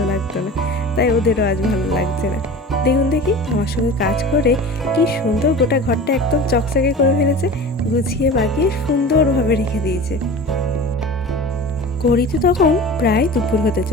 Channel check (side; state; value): both; normal; correlation 0.36